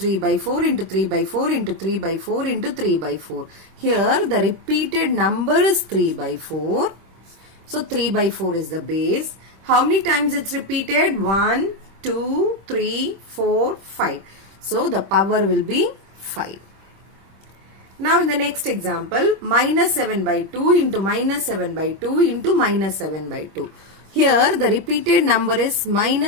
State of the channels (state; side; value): late; left; 26 ms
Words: by 4 into 3 by 4 into 3 by 4 into 3 by 4. Here the repeated number is 3 by 4. So 3 by 4 is the base. How many times it's repeated? 1, 2, 3, 4, 5. So the power will be 5. Now in the next example, minus 7 by 2 into minus 7 by 2 into minus 7 by 2. Here the repeated number is